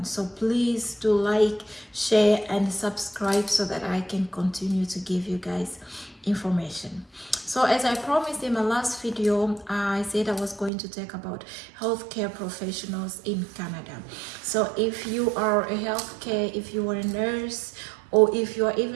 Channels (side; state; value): left; drops out; at 10.7 s